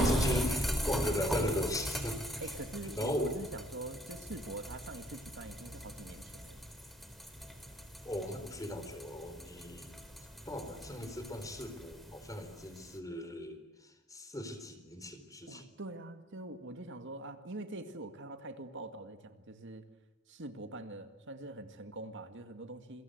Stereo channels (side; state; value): both; normal; correlation 0.63